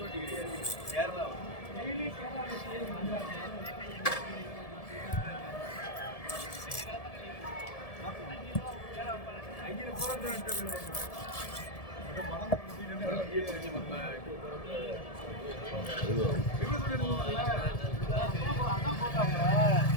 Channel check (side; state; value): right; late; 1.7 ms